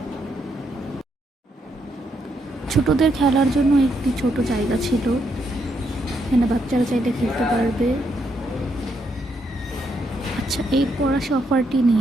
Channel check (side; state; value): both; normal; correlation 0.77